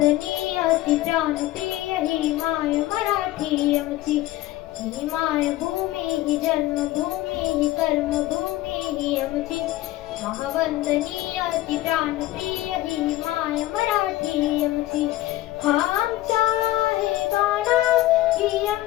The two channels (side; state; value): right; quieter; 16.2 dB